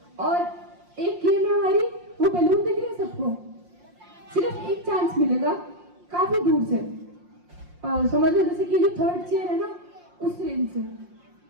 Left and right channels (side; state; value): left; late; 5.6 ms